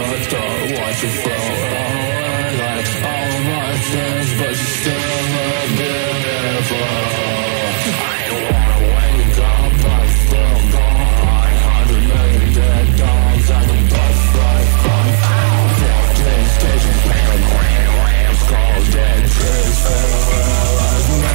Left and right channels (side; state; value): left; silent; digital silence